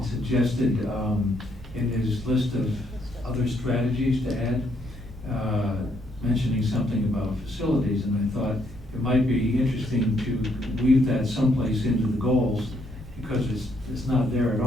suggested in his list of other strategies to add, mentioning something about facilities, and I thought it might be interesting to weave that someplace into the goals, because it's not there at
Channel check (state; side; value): normal; both; correlation 0.72